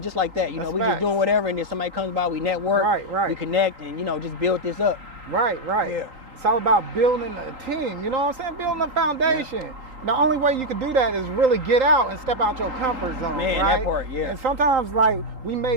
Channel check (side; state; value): left; late; 3.8 ms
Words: just like that. We just doing whatever, and then somebody comes by, we network, we connect, and just build this up. Right. Yeah. It's all about building a team. You know what I'm saying? Building a foundation. the only way you can do that is really get out and step out your comfort zone. Man, right? that part, yeah. And sometimes, like, we